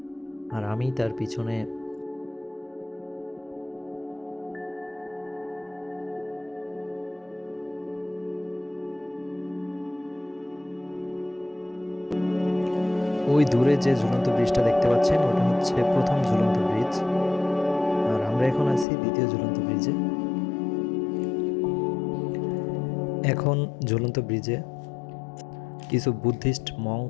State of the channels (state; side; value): drops out; right; at 18.9 s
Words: আর আমি তার পিছনে। ওই দূরে যে ঝুলন্ত ব্রিজটা দেখতে পাচ্ছেন ওটা হচ্ছে প্রথম ঝুলন্ত ব্রিজ, আর আমরা এখন আছি দ্বিতীয় ঝুলন্ত ব্রিজে। এখন ঝুলন্ত ব্রিজে কিছু বুদ্ধিস্ট